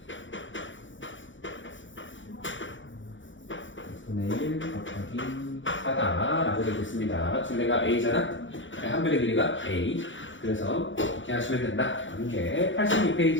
6분의 1 곱하기 4다 라고 되겠습니다. 둘레가 A잖아. 한 변의 길이가 A. 그래서 이렇게 하시면 된다. 이게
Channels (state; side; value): late; right; 0.56 ms